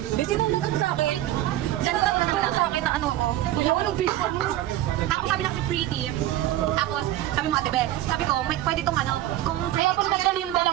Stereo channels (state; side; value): quieter; left; 14.0 dB